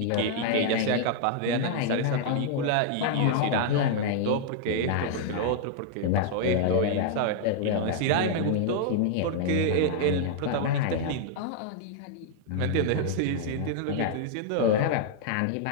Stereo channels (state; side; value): different; both; correlation 0.00